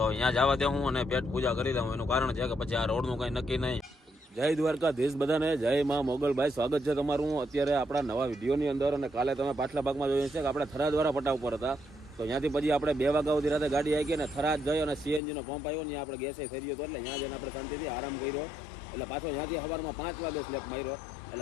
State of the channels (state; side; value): drops out; right; at 15.2 s